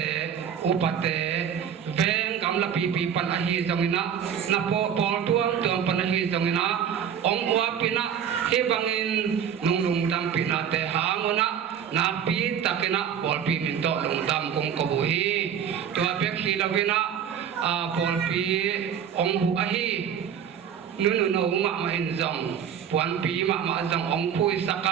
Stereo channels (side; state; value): left; quieter; 8.4 dB